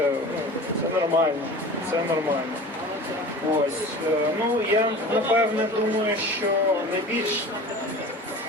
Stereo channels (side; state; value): both; normal; correlation 0.37